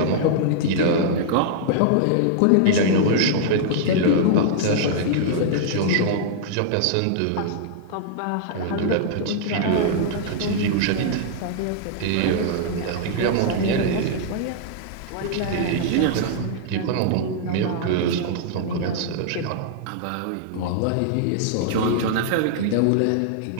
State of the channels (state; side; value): different; both; correlation -0.01